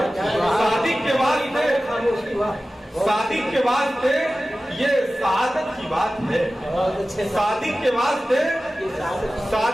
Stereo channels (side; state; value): both; normal; correlation 0.95